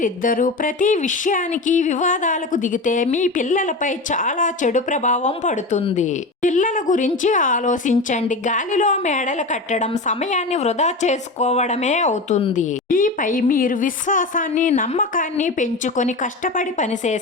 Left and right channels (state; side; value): quieter; right; 3.2 dB